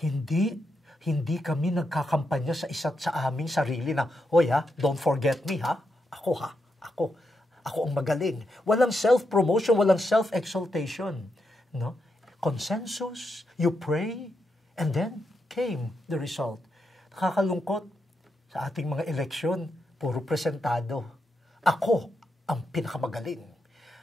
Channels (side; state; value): both; normal; correlation 0.83